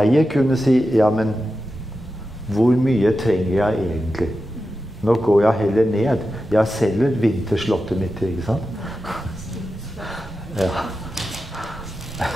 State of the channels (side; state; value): both; normal; correlation 0.91